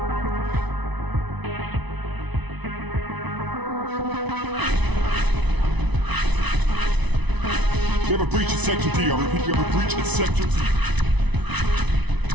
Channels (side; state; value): left; late; 1.0 ms